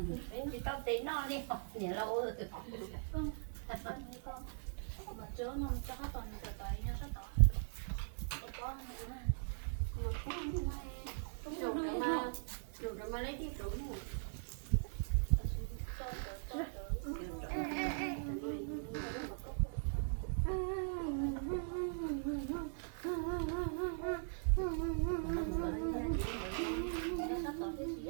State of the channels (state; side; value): silent; left; digital silence